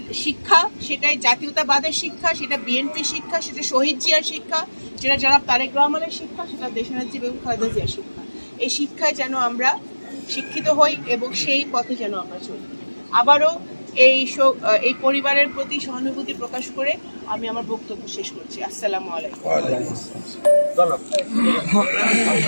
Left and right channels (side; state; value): both; inverted; correlation -1.00